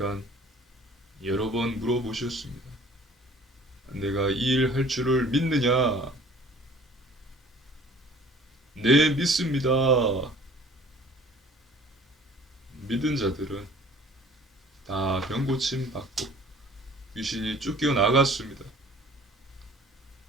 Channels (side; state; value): both; normal; correlation 0.51